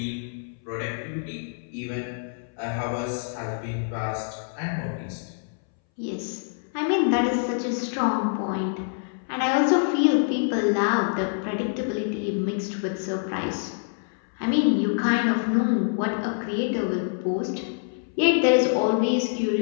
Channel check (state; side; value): silent; right; 61 dB below the other